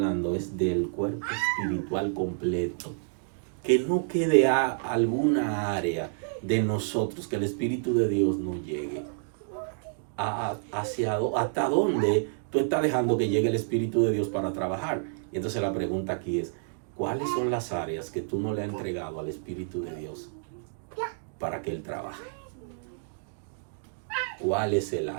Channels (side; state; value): left; silent; digital silence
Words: es del cuerpo espiritual completo. Que no quede alguna área de nosotros, que el Espíritu de Dios no llegue. ¿Hasta dónde tú estás dejando que llegue el Espíritu de Dios para trabajar? Y entonces la pregunta aquí es, ¿cuáles son las áreas que tú no le has entregado al Espíritu de Dios para que Él trabaje? ¿Cuál es el